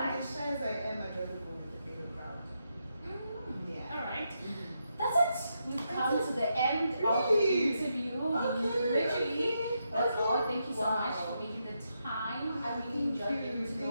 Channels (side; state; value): both; inverted; correlation -0.83